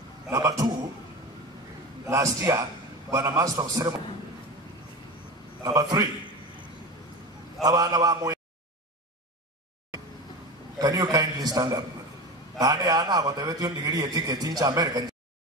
Number two, last year, when a master of ceremony. Number three, can you kindly stand up? Anna, whatever you degree a ticket in American.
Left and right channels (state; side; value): normal; both; correlation 0.28